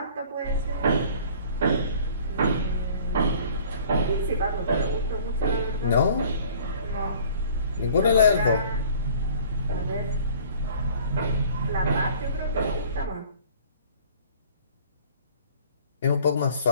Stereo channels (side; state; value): both; inverted; correlation -0.50